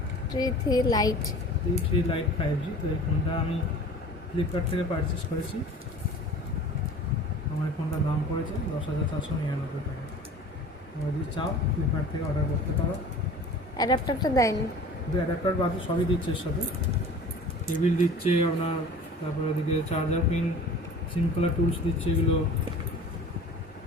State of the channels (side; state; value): both; normal; correlation 0.43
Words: T3 light. T3 light 5G। তো এই ফোনটা আমি ফ্লিপকার্ট থেকে পারচেস করেছি। আমার এই ফোনটার দাম পড়েছে 10,499 টাকা। তোমরা যদি চাও ফ্লিপকার্ট থেকে অর্ডার করতে পারো। অ্যাডাপ্টারটা দেয়নি? কিন্তু অ্যাডাপ্টার বাদে সবই দিচ্ছে এর সাথে, কেবিল দিচ্ছে আপনার, তারপর ওদিকে চার্জার পিন, সিম্পলার টুলস দিচ্ছে, এগুলো